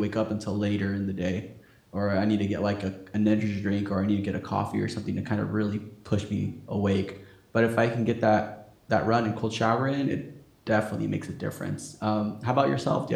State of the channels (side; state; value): both; identical; correlation 1.00